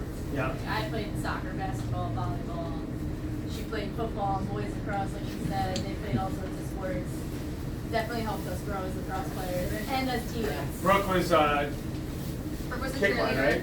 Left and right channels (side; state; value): both; identical; correlation 1.00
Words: Yeah. I played soccer, basketball, volleyball. She played football, boys lacrosse, like you said. They played all sorts of sports. Definitely helped us grow as lacrosse players and as teammates. Brooke was Brooke was a kick line, cheerleader. right?